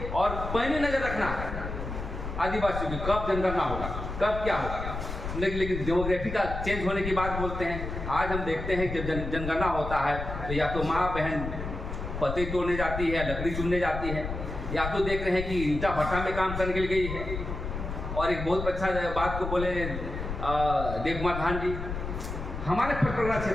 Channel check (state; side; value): noise; left; rumble, 6 dB below the sound